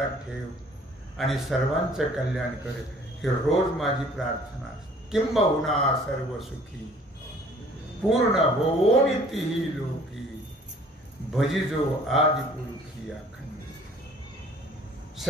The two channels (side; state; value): both; normal; correlation 0.54